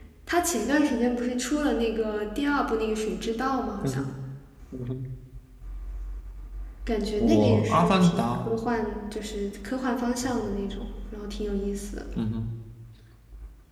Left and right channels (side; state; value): both; identical; correlation 1.00